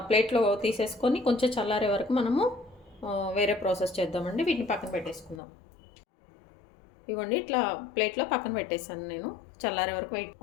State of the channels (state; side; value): drops out; right; at 5.4 s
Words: ప్లేట్లో తీసేసుకొని కొంచెం చల్లారే వరకు మనము వేరే ప్రాసెస్ చేద్దామండి. వీటిని పక్కన పెట్టేసుకుందాం. ఇవ్వండి ఇట్లా ప్లేట్లో పక్కన పెట్టేసాను నేను. చల్లారే వరకు